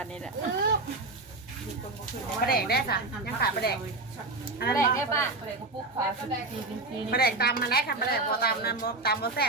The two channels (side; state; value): left; quieter; 3.3 dB